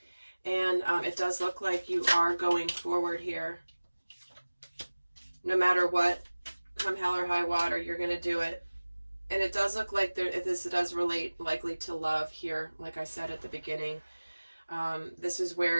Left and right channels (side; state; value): both; inverted; correlation -1.00